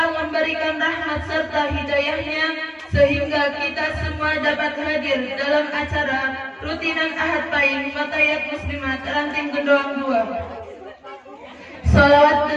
memberikan rahmat serta hidayahnya sehingga kita semua dapat hadir dalam acara rutinan Ahad Pahing Fatayat Muslimat Ranting Gendoang 2. Salawat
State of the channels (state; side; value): identical; both; correlation 1.00